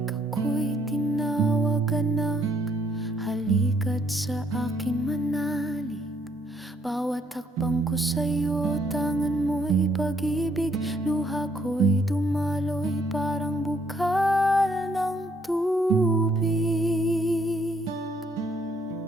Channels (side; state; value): both; normal; correlation 0.69